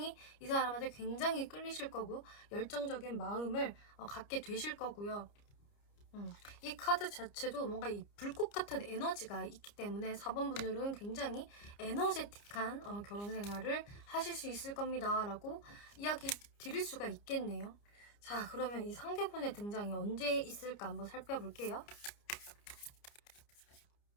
이 사람한테 굉장히 끌리실 거고 열정적인 마음을 갖게 되실 거고요. 이 카드 자체도 뭔가 이 불꽃 같은 에너지가 있기 때문에 4번 분들은 굉장히 에너제틱한 결혼 생활을 하실 수 있을 겁니다 라고 이야기 드릴 수가 있겠네요. 자, 그러면 이 상대분의 등장이 언제 있을까 한번 살펴볼게요.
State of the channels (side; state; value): right; late; 29 ms